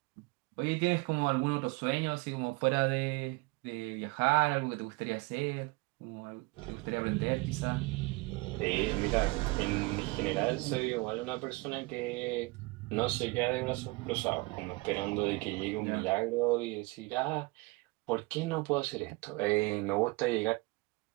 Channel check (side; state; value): left; quieter; 25.2 dB